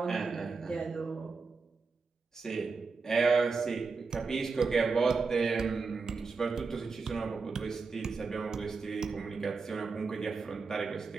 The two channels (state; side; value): quieter; left; 4.6 dB